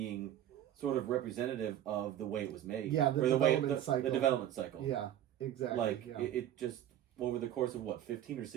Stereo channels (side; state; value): left; quieter; 11.5 dB